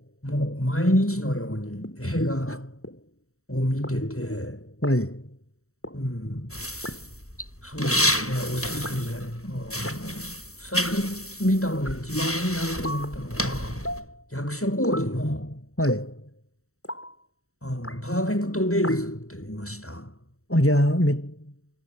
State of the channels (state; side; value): late; right; 0.64 ms